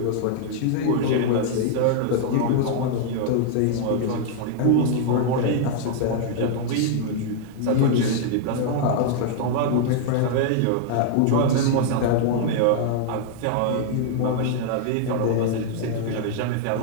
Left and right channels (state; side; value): different; both; correlation 0.00